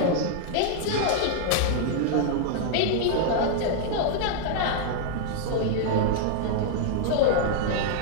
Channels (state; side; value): different; both; correlation -0.01